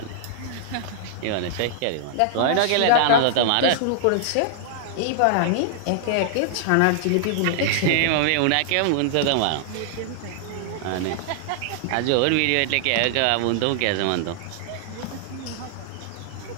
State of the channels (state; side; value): different; both; correlation -0.01